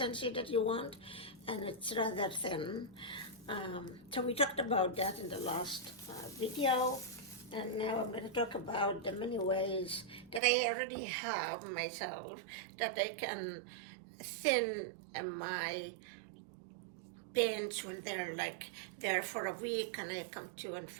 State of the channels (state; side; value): drops out; left; at 10.4 s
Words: that you want, and it's rather thin. So we talked about that in the last video, and now I'm going to talk about the many ways that I already have myself that I can thin my paints when they're like there for a week and I come to and